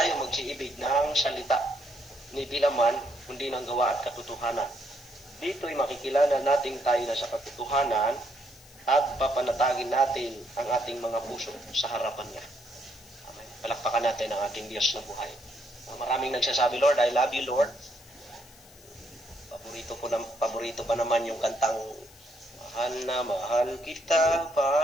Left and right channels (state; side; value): noise; left; hiss, 23 dB below the sound